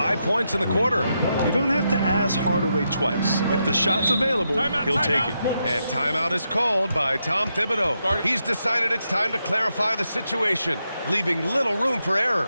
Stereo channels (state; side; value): inverted; both; correlation -0.83